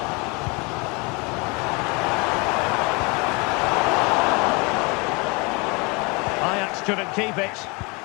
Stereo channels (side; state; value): right; quieter; 28.8 dB